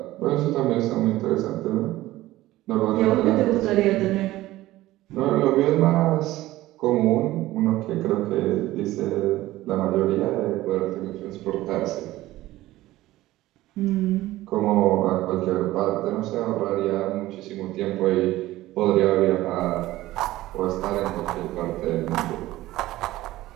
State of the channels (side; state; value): left; quieter; 16.5 dB